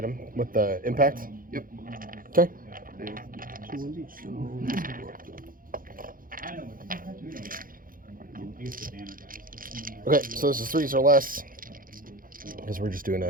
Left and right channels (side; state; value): left; late; 0.41 ms